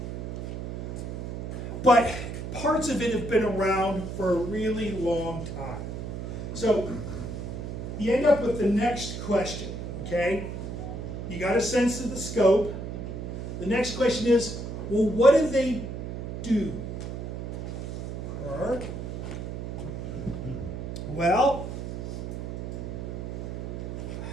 But parts of it have been around for a really long time. So you end up with the next question, okay? You got a sense of the scope. The next question is, well, what do they do? Or, well,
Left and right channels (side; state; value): right; noise; hum, 6 dB below the sound